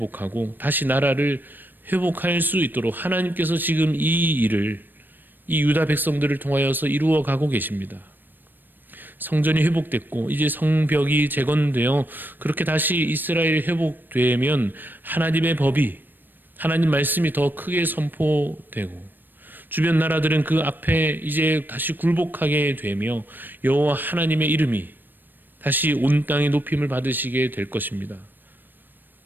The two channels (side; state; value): left; late; 0.092 ms